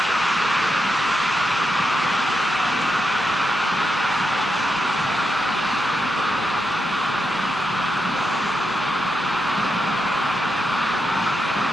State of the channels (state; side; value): normal; both; correlation 0.85